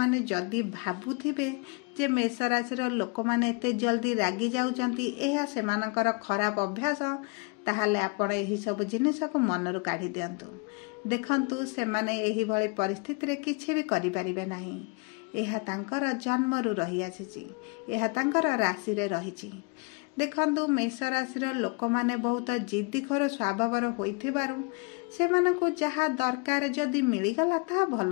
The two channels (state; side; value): quieter; right; 31.7 dB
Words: ଯଦି ଭାବୁଥିବେ ଯେ ମେଷ ରାଶିର ଲୋକମାନେ ଏତେ ଜଲ୍ଦି ରାଗି ଯାଉଛନ୍ତି, ଏହା ସେମାନଙ୍କର ଖରାପ ଅଭ୍ୟାସ, ତାହେଲେ ଆପଣ ଏହିସବୁ ଜିନିଷକୁ ମନରୁ କାଢ଼ି ଦିଅନ୍ତୁ। ଦେଖନ୍ତୁ, ସେମାନେ ଏହିଭଳି ପରିସ୍ଥିତିରେ କିଛି ବି କରିପାରିବେ ନାହିଁ। ଏହା ତାଙ୍କର ଜନ୍ମରୁ ରହିଆସିଛି। ଏହା ତାଙ୍କର ରାଶିରେ ରହିଛି। ଦେଖନ୍ତୁ, ମେଷ ରାଶିର ଲୋକମାନେ ବହୁତ ଜିଦ୍ଦିଖୋର ସ୍ୱଭାବର ହୋଇଥିବାରୁ ସେମାନଙ୍କୁ ଯାହା ଦରକାର ଯଦି ମିଳିଗଲା ତାହା ଭଲ